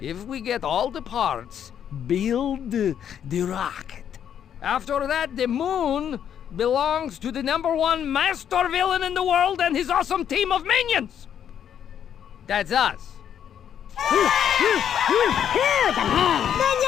if we get all the parts, build the rocket. After that, the moon belongs to the #1 master villain in the world and his awesome team of minions. That's us.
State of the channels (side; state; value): right; quieter; 9.1 dB